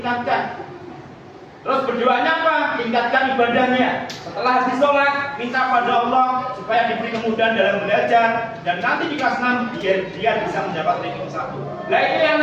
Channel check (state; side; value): identical; both; correlation 1.00